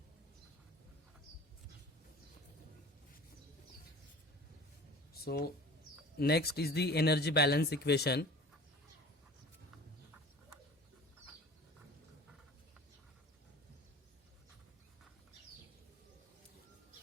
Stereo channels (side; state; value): both; normal; correlation 0.43